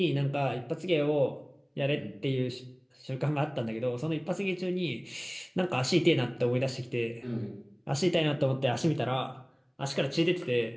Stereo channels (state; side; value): identical; both; correlation 1.00